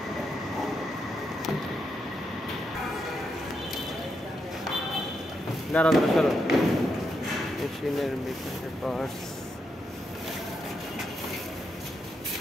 দাঁড়া চলো, মেশিনের ভিতরে পার্টস।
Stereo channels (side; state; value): both; normal; correlation 0.82